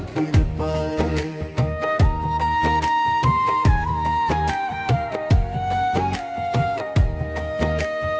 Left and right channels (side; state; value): both; identical; correlation 1.00